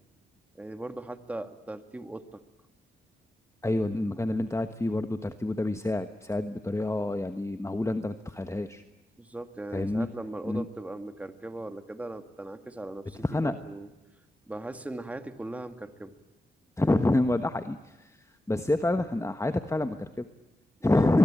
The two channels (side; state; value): both; normal; correlation 0.93